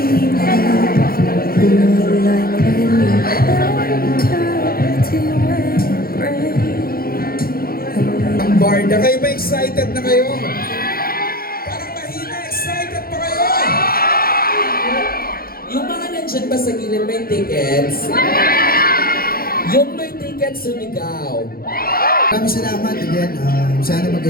Ang Barda, kayo ba excited na kayo? Parang mahina, excited pa kayo? Yung mga nandyan ba sa gilid may tickets? Yung may tickets, sumigaw. Maraming salamat again. Sana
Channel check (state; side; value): late; right; 0.43 ms